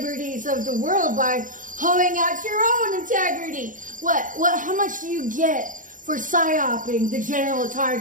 of the world by hoeing out your own integrity. How much do you get for psyoping the general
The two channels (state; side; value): late; left; 0.38 ms